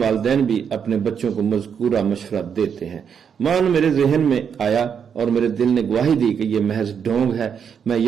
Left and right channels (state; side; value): quieter; left; 7.3 dB